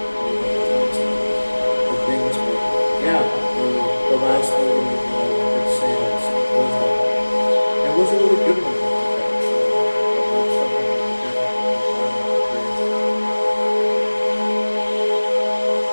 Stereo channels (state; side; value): inverted; both; correlation -1.00